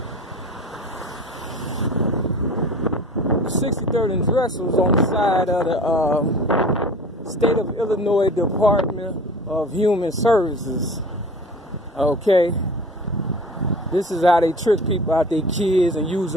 The 63rd and Drexel is on the side of the State of Illinois Department of Human Services. Okay. This is how they trick people out their kids and use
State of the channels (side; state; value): both; normal; correlation 0.40